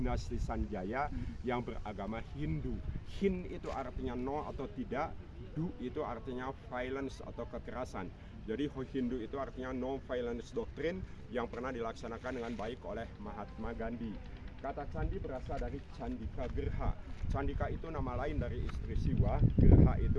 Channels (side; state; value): both; identical; correlation 1.00